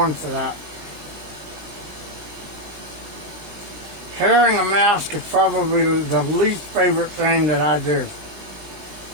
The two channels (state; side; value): late; left; 20 ms